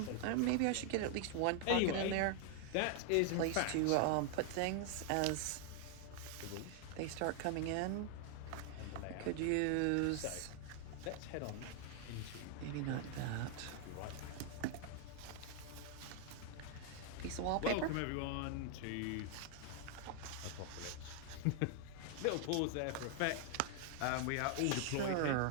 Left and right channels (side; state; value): both; different; correlation 0.00